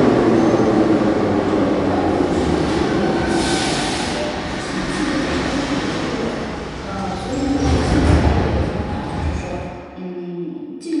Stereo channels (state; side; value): identical; both; correlation 1.00